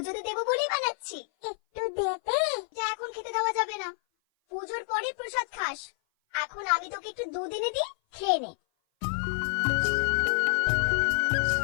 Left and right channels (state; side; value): silent; right; 56 dB below the other